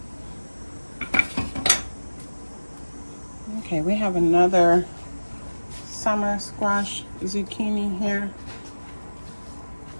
Okay, we have another summer squash zucchini here.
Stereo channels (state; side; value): inverted; both; correlation -1.00